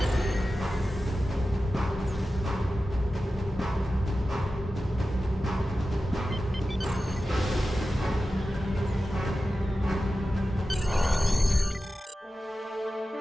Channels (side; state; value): both; normal; correlation 0.93